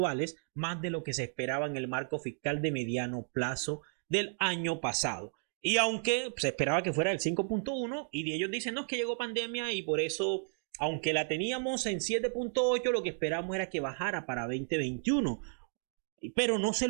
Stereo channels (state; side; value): silent; left; 56 dB below the other